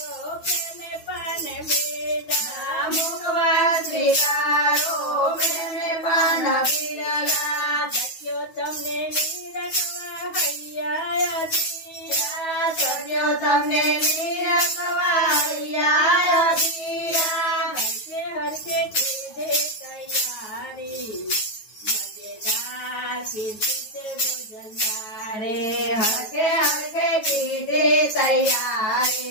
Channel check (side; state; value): right; late; 9.3 ms